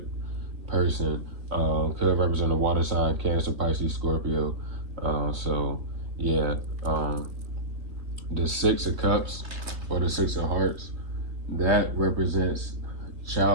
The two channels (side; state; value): left; late; 3.2 ms